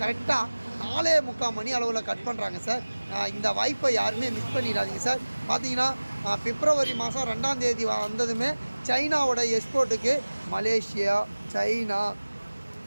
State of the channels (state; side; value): inverted; both; correlation -1.00